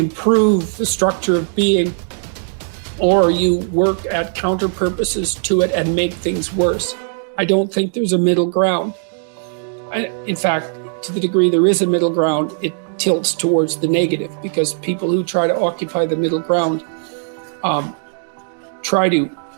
the structure of being, or you work at counter purposes to it and make things worse. I don't think there's a middle ground. In fact, to the degree there is a middle ground, it tilts towards the negative, because people who try to occupy the middle ground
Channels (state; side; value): silent; left; digital silence